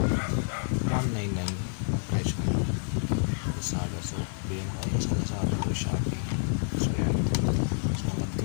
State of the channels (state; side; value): silent; right; digital silence